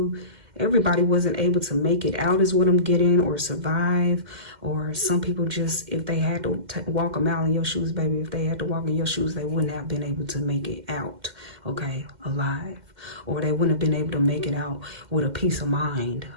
Everybody wasn't able to make it out is what I'm getting, or survive. Or some people just, if they had to walk a mile in your shoes, baby, if they had to walk in your shoes, they wouldn't have been able to make it out, okay, alive. Or they wouldn't have been able to make it out with a peace of mind,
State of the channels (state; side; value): late; left; 2.1 ms